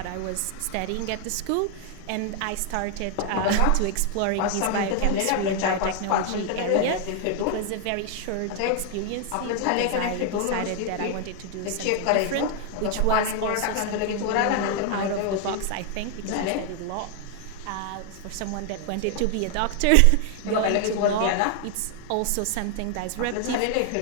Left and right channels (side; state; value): both; different; correlation 0.00